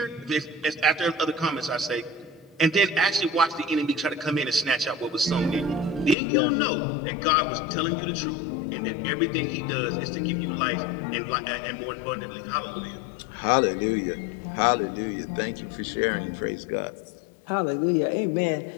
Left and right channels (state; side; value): drops out; right; at 6.2 s